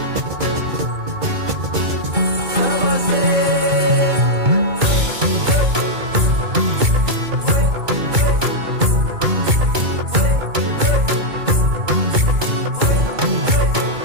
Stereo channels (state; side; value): late; left; 2.2 ms